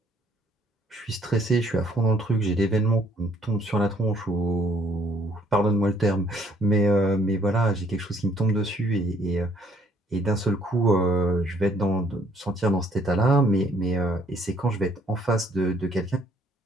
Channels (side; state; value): both; normal; correlation 0.64